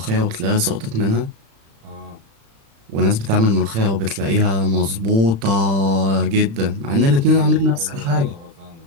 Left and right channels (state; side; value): late; left; 36 ms